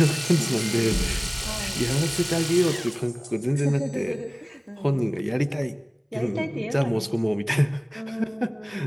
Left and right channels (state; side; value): identical; both; correlation 1.00